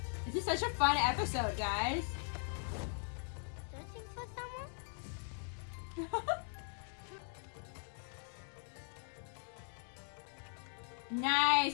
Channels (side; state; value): right; silent; 51 dB below the other